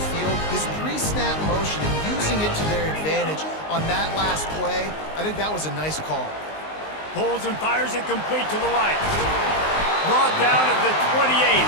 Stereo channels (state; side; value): late; right; 19 ms